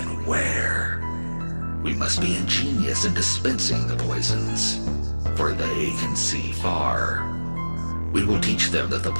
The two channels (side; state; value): both; inverted; correlation -1.00